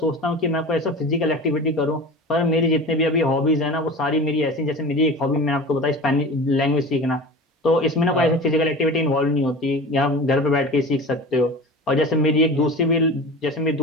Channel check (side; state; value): both; normal; correlation 0.34